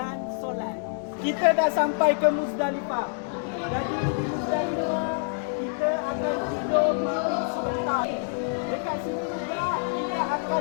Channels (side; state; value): right; silent; 60 dB below the other